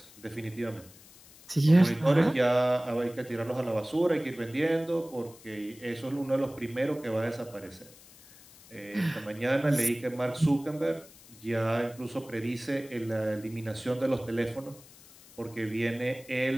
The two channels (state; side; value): noise; left; hiss, 22 dB below the sound